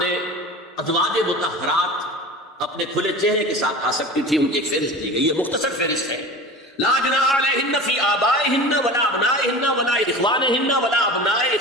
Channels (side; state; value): both; normal; correlation 0.34